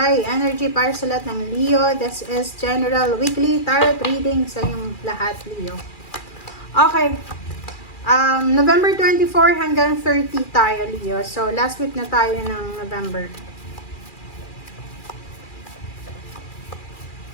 energy para sa lahat ng Leo. This is General Weekly Tarot Reading sa inyong lahat, Leo. Okay. November 24 hanggang 30 tayo, Leo. So, last week na tayo ng November.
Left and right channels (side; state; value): right; late; 2.4 ms